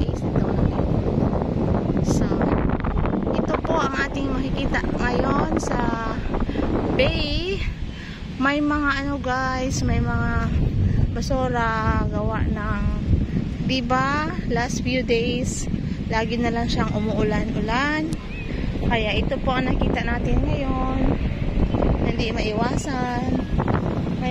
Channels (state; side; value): identical; both; correlation 1.00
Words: ito. So, ito po ang ating makikita ngayon sa bay. May mga ano guys, may mga basura gawa ng, diba, last few days lagi na lang siyang umuulan-ulan. Kaya ito po ang nakita natin ngayon. Hindi maiwasan.